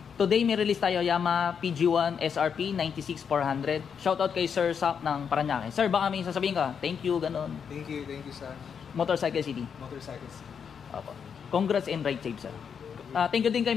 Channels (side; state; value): right; quieter; 7.0 dB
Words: Today may release tayo Yamaha PG1 SRP 96400. Shoutout kay Sir Sak ng Paranaque. Sir, baka may sasabihin ka. Thank you, ganun. Thank you sir. Motorcycle City. Motorcycle City. Opo. Congrats and ride safe, sir. Thank you din kay